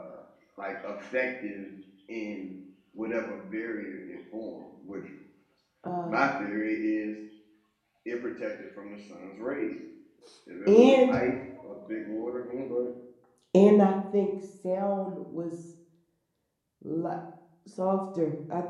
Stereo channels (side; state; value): both; identical; correlation 1.00